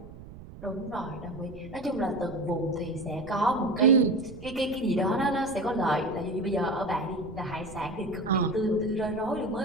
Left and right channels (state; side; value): noise; right; rumble, 16 dB below the sound